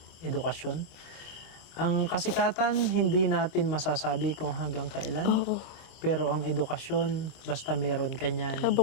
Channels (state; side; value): late; right; 25 ms